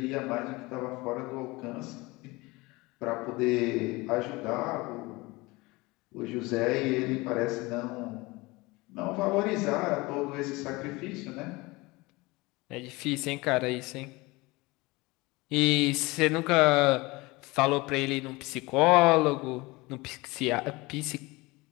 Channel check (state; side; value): quieter; right; 22.9 dB